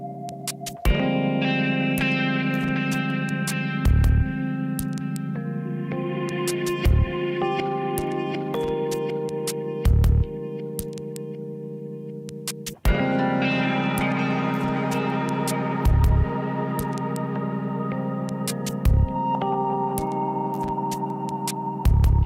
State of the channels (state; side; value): identical; both; correlation 1.00